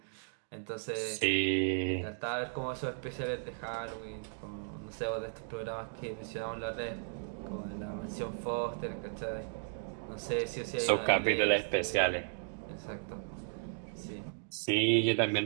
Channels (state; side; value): silent; left; digital silence